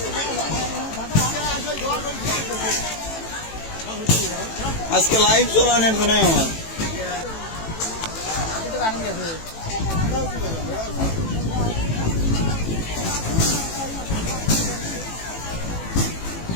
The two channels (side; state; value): right; late; 18 ms